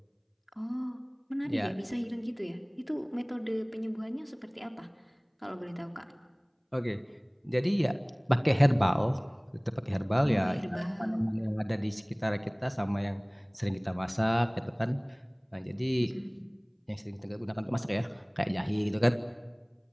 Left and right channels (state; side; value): identical; both; correlation 1.00